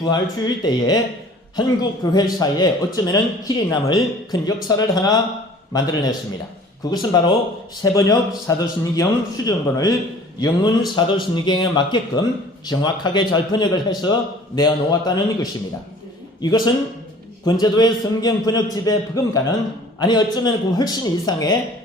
때에 한국 교회사에 어쩌면은 길이 남을 큰 역사를 하나 만들어냈습니다. 그것은 바로 새번역 사도신경 수정본을 영문 사도신경에 맞게끔 정확하게 잘 번역을 해서 내어놓았다는 것입니다. 이것은 권제도의 성경 번역집의 버금가는 아니 어쩌면 그 훨씬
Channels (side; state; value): both; normal; correlation 0.49